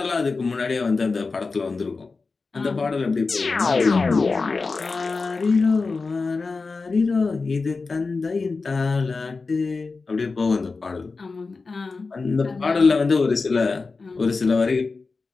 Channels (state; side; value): quieter; right; 4.1 dB